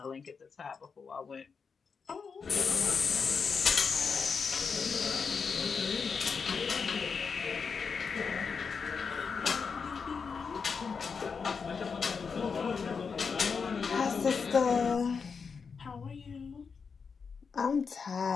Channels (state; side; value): quieter; right; 5.6 dB